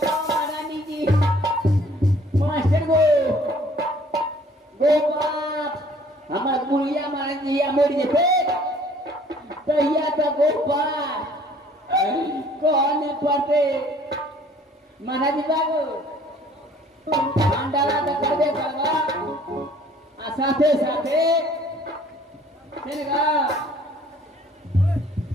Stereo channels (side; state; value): both; normal; correlation 0.56